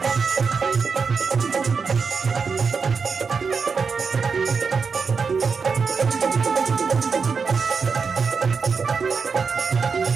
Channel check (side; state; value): left; quieter; 5.4 dB